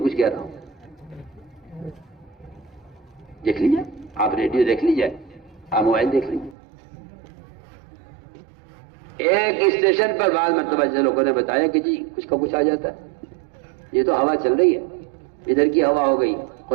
کچھ کہہ رہا ہوں. دیکھ لیجیے، آپ ریڈیو دیکھ لیجیے، آپ موبائل دیکھ لیجیے. ایک اسٹیشن پر بعض مرتبہ لوگوں نے بتایا کہ جی کچھ کا کچھ آ جاتا ہے. یہ تو ہوا چل رہی ہے، ادھر کی ہوا ہو گئی،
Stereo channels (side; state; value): left; drops out; at 6.6 s